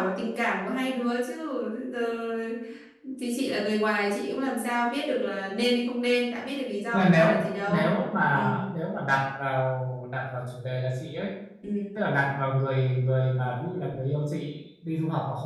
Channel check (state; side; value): identical; both; correlation 1.00